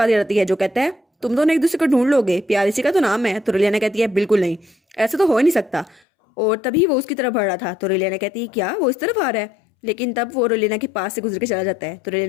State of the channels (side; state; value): right; drops out; at 6.0 s